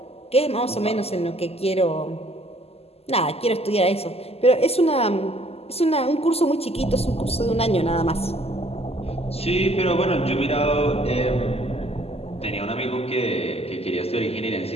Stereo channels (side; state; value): right; late; 0.29 ms